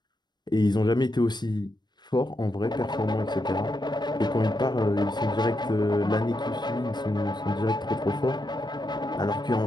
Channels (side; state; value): right; late; 0.21 ms